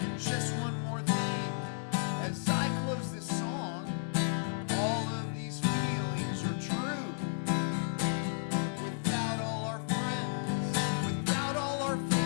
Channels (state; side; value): silent; right; 56 dB below the other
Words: just one more thing, as I close this song, all of these feelings are true. Without all our friends, without all our